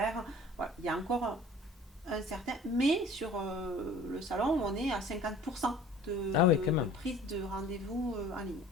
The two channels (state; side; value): normal; both; correlation 0.48